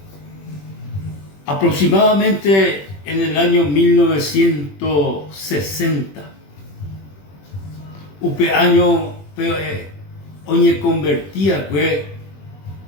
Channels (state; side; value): late; right; 21 ms